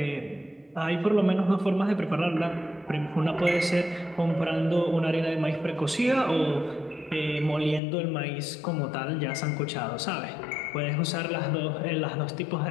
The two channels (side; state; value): right; drops out; at 7.8 s